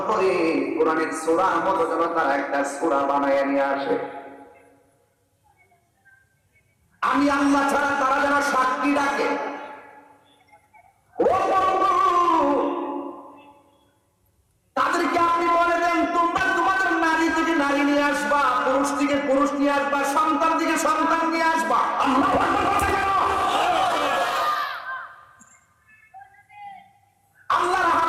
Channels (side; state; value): both; identical; correlation 1.00